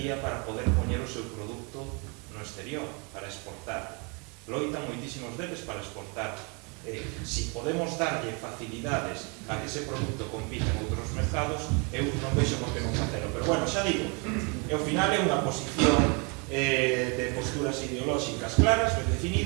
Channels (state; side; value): quieter; left; 32.8 dB